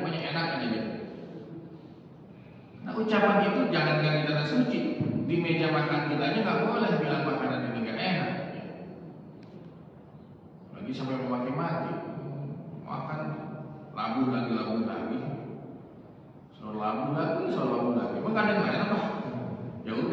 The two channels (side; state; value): both; identical; correlation 1.00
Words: enak aja gitu. Nah ucapan itu jangan di tanah suci. Di meja makan kita aja nggak boleh bilang makanan ini nggak enak. Lagi sampai memaki-maki, makan labu lagi, soal labu lagi. Emang ada yang enak Pak? Ya